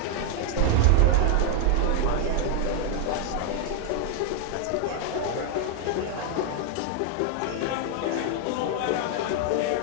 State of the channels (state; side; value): different; both; correlation 0.00